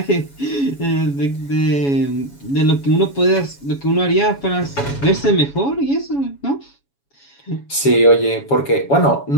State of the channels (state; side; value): late; right; 7.2 ms